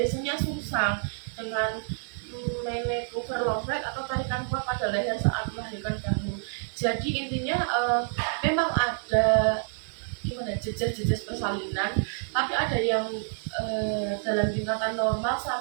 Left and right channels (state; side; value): silent; left; digital silence